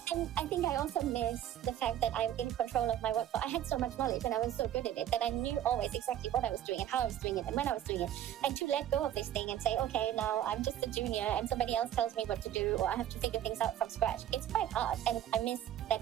And I think I also miss the fact that I'm in control of my workflow. I had so much knowledge and I was so good at it that I knew always exactly what I was doing and how I was doing it and when I was doing it. And to let go of this thing and say, okay, now I'm just a junior and somebody else tells me what to do or I have to figure things out from scratch. It's quite hard and I miss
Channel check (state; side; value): quieter; left; 11.3 dB